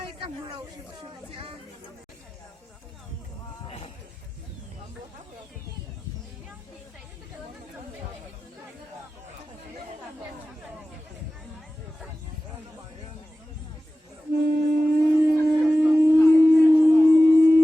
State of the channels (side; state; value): both; normal; correlation 0.95